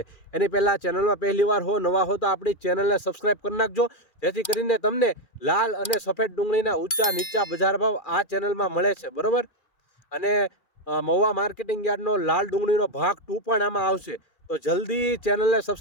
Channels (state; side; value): late; right; 2.4 ms